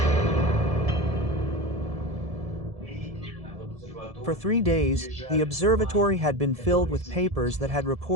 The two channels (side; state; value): left; late; 1.7 ms